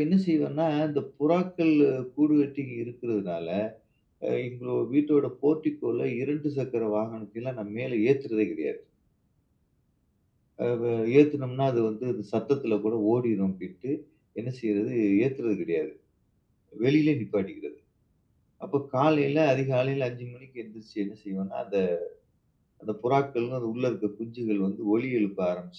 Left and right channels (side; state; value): both; identical; correlation 1.00